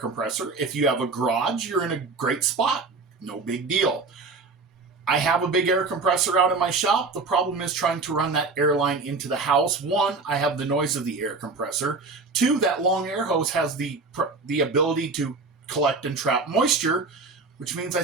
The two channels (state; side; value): quieter; left; 3.9 dB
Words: If you have a garage, you're in a great spot. No big deal. I have a big air compressor out in my shop. The problem is trying to run that air line into the house. One, I have the noise of the air compressor. Two, that long air hose has the ability to collect and trap moisture, which means I